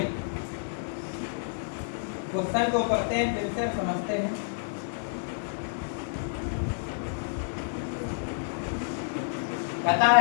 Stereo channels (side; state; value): right; silent; digital silence